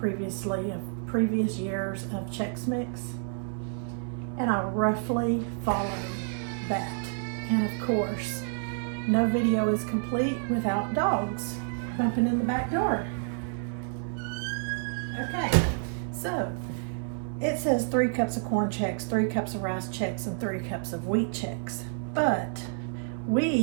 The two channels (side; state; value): left; silent; 58 dB below the other